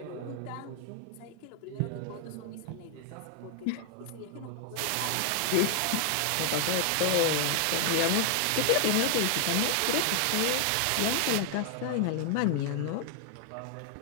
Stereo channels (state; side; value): different; both; correlation 0.00